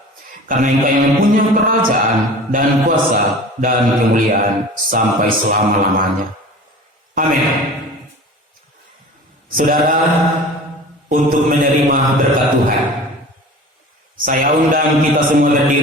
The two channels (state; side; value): normal; both; correlation 0.39